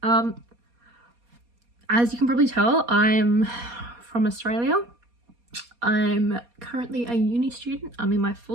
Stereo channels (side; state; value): left; late; 4.2 ms